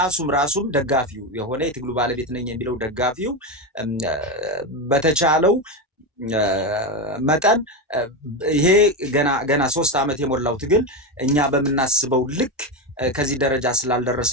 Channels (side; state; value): both; normal; correlation 0.14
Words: ራሱም ደጋፊው የሆነ የትግሉ ባለቤት ነኝ የሚለው ደጋፊው በተቻለው መጠን ይሄ ገና 3 ዓመት የሞላው ትግል እኛ በምናስበው ልክ ከዚህ ደረጃ ስላልደረሰ